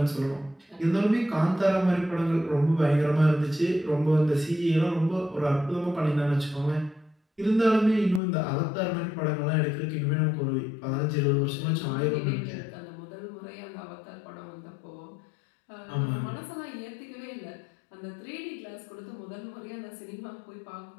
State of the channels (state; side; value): drops out; right; at 8.2 s